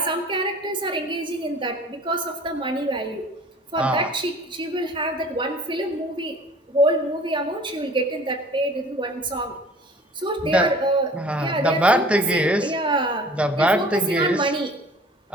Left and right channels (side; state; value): both; normal; correlation 0.47